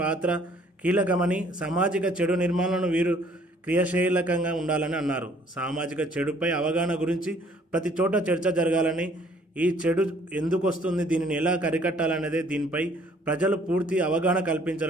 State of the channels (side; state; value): both; normal; correlation 0.59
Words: పాత్ర కీలకమని, సామాజిక చెడు నిర్మాణాలను వీరు క్రియాశీలకంగా ఉండాలని అన్నారు। సామాజిక చెడుపై అవగాహన గురించి ప్రతి చోట చర్చ జరగాలని, ఈ చెడు ఎందుకు వస్తుంది, దీనిని ఎలా అరికట్టాలనేదే దీనిపై ప్రజలు పూర్తి అవగాహన